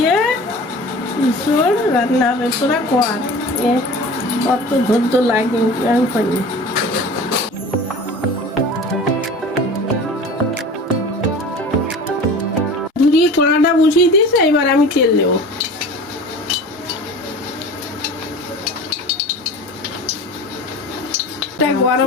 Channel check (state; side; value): normal; both; correlation 0.39